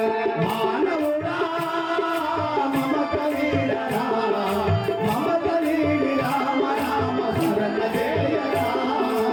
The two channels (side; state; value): both; identical; correlation 1.00